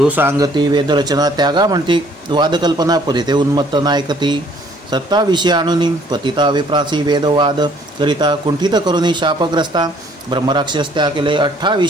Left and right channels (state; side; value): normal; both; correlation 0.60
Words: सांगती वेदरचना त्यागा म्हणती वादकल्पना परिते उन्मत्त नायकती। 27 आणुनी पतिता विप्रासी वेदवाद करिता कुंठित करुनी शापग्रस्ता ब्रह्मराक्षस त्या केले।